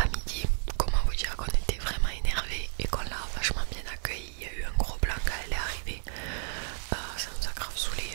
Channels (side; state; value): left; silent; 57 dB below the other